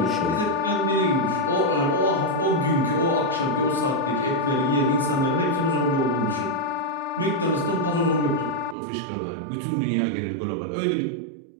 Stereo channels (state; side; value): drops out; left; at 8.8 s